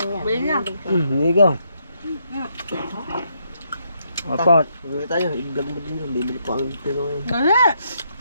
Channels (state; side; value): inverted; both; correlation -0.76